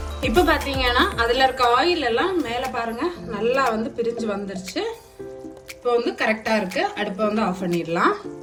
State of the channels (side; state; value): both; identical; correlation 1.00